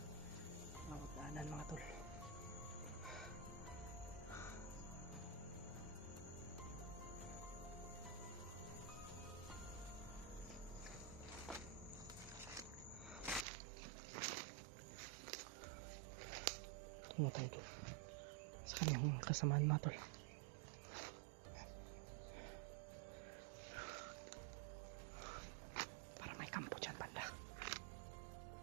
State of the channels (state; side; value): drops out; left; at 13.5 s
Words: bawat daanan mga tol. Tungo tayo doon sa kanyang kasamaan mga tol. Para may kampo dyan banda.